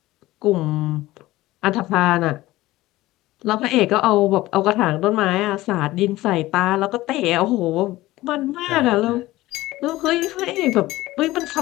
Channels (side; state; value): right; quieter; 17.5 dB